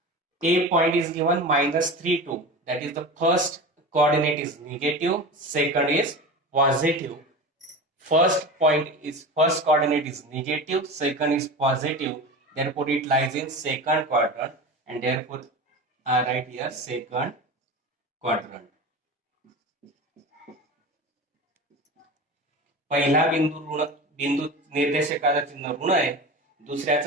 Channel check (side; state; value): both; normal; correlation 0.30